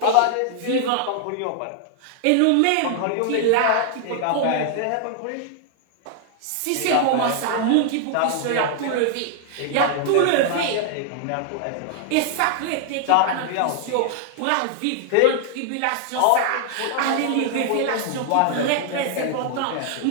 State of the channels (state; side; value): different; both; correlation 0.00